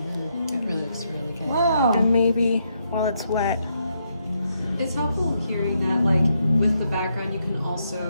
really looks really good. Wow. And maybe while it's wet. It's helpful hearing that, like, with the background, you can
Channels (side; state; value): both; inverted; correlation -0.78